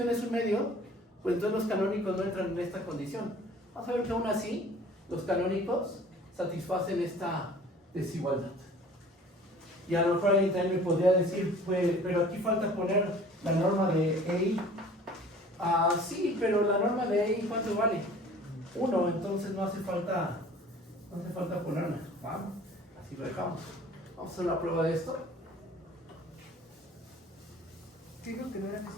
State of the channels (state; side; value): normal; both; correlation 0.48